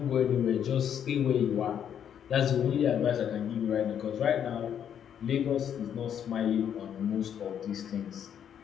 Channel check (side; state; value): right; quieter; 9.0 dB